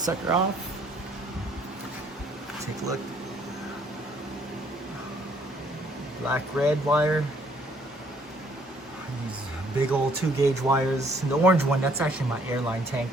off. Take a look. Black red wire. These big old 2-gauge wires. And the orange one, that's actually my airline tank.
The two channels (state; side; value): normal; both; correlation 0.64